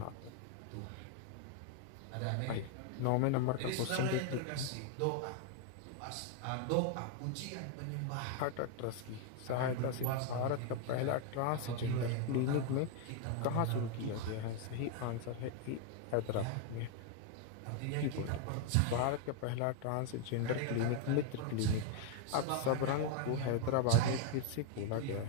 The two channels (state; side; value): different; both; correlation 0.00